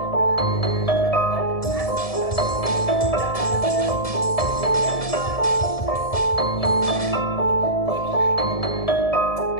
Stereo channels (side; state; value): right; late; 1.7 ms